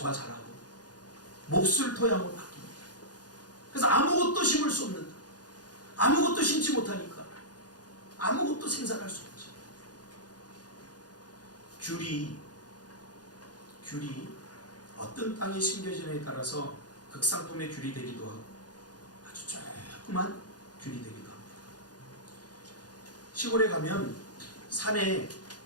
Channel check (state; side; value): late; right; 0.69 ms